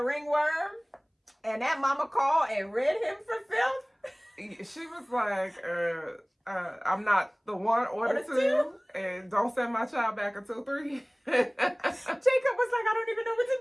ringworm, and that mama called and rid him for filth. She was like, I'm not the one or the two, and don't send my child back until 3. Jacob was like, I don't even know what to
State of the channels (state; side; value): identical; both; correlation 1.00